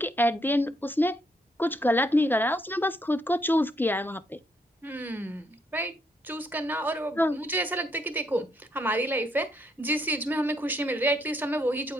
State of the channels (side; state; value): both; normal; correlation 0.73